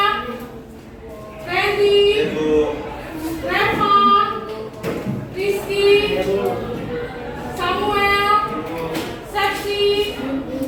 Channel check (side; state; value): both; identical; correlation 1.00